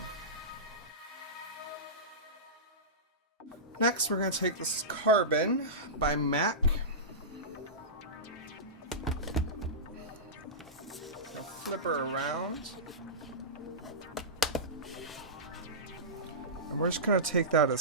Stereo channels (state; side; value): normal; both; correlation -0.18